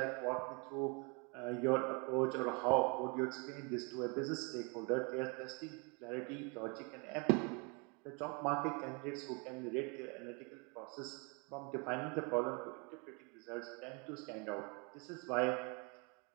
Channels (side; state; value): left; quieter; 32.5 dB